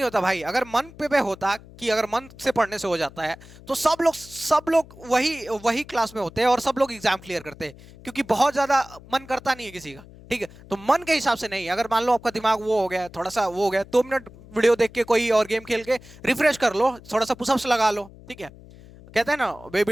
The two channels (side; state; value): left; noise; hum, 20 dB below the sound